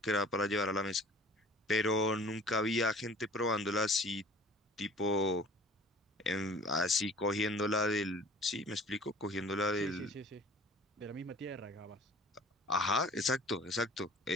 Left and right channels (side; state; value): both; normal; correlation 0.47